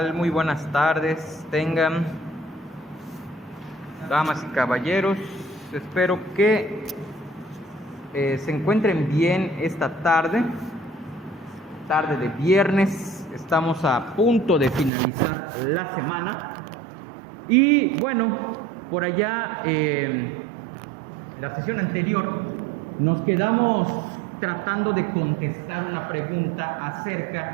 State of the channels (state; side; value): drops out; left; at 14.9 s